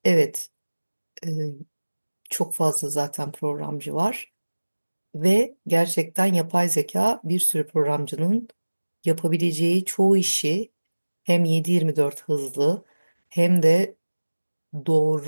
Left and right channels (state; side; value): inverted; both; correlation -1.00